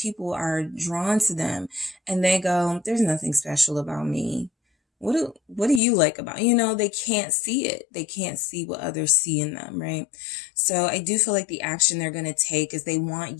are drawn to them and they go, there's nothing special about me. What do you like about, you know, they can't see it. They can't see what others see in them, right? So I do feel like the action they're going to take is they want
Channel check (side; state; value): right; drops out; at 5.8 s